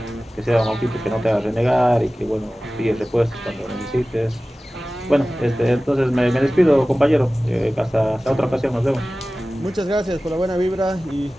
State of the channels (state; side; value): normal; both; correlation 0.97